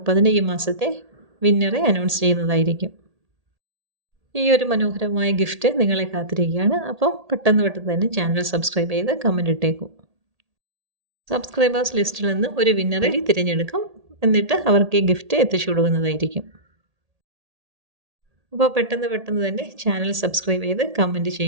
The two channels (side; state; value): left; late; 1.8 ms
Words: ഈ മാസത്തെ വിന്നറെ അനൗൺസ് ചെയ്യുന്നതായിരിക്കും. ഈ ഒരു മനോഹരമായ ഗിഫ്റ്റ് നിങ്ങളെ കാത്തിരിക്കുകയാണ്. അപ്പം പെട്ടെന്ന് തന്നെ ചാനൽ സബ്സ്ക്രൈബ് ചെയ്ത് കമൻറ്റ് ഇട്ടേക്കും. സബ്സ്ക്രൈബേഴ്സ് ലിസ്റ്റിൽ നിന്ന് ഒരു വിന്നറെ തിരഞ്ഞെടുക്കും. എന്നിട്ട് അവർക്ക് ഈ ഗിഫ്റ്റ് എത്തിച്ചു കൊടുക്കുന്നതായിരിക്കും. അപ്പോൾ പെട്ടെന്ന് തന്നെ ചാനൽ സബ്സ്ക്രൈബ് ചെയ്ത് കമൻറ്റ്